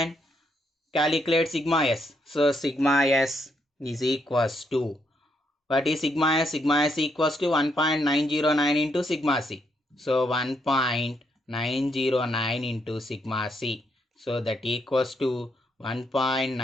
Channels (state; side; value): normal; both; correlation 0.76